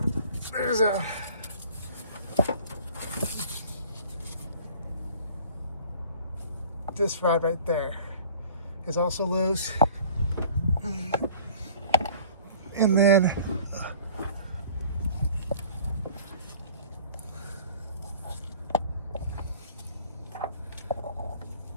there's this rod right there is also loose. And then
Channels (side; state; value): both; inverted; correlation -0.48